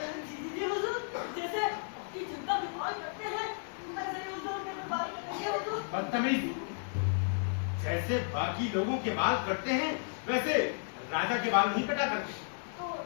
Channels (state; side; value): silent; right; digital silence